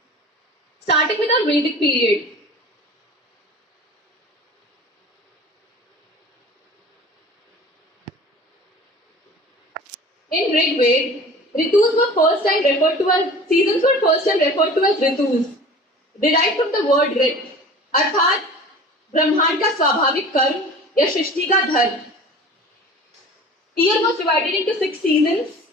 Starting with our Vedic period. In Rig Veda, ritus were first time referred to as seasons were first time referred to as ritus, derived from the word rit, अर्थात ब्रह्मांड का स्वाभाविक कर्म या सृष्टि का धर्म. Year was divided into 6 seasons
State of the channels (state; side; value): normal; both; correlation 0.42